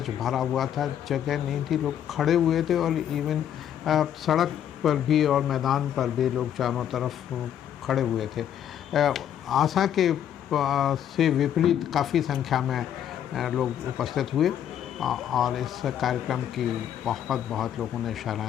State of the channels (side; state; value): right; quieter; 10.0 dB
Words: भरा हुआ था। जगह नहीं थी, लोग खड़े हुए थे और इवन सड़क पर भी और मैदान पर भी लोग चारों तरफ खड़े हुए थे। आशा के से विपरीत काफ़ी संख्या में लोग उपस्थित हुए और इस कार्यक्रम की बहुत लोगों ने